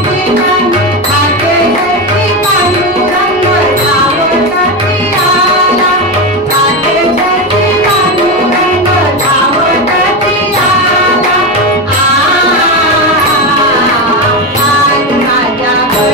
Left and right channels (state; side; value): normal; both; correlation 0.15